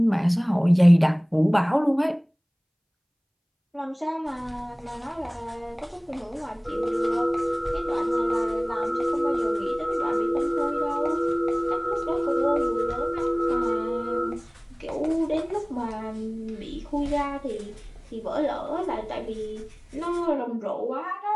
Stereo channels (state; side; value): identical; both; correlation 1.00